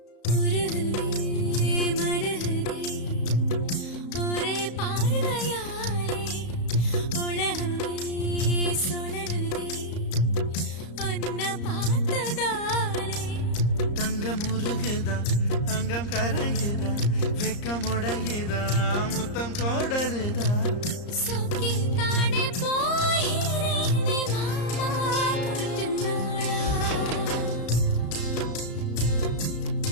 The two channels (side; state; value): right; late; 34 ms